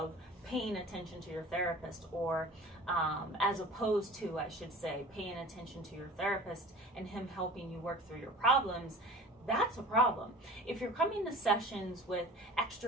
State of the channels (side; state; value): both; normal; correlation 0.40